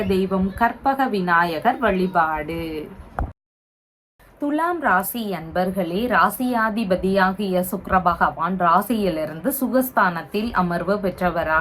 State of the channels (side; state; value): both; identical; correlation 1.00